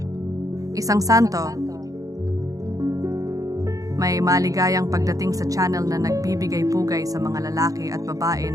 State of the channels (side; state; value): left; late; 0.17 ms